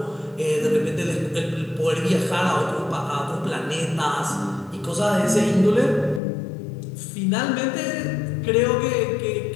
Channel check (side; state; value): right; drops out; at 6.2 s